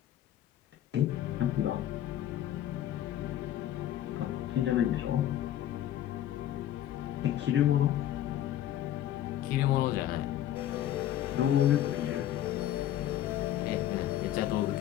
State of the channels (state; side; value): quieter; right; 12.0 dB